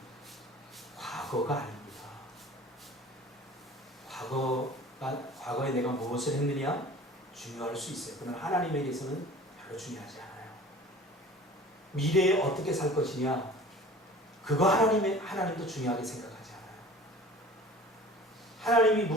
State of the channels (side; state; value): both; normal; correlation 0.43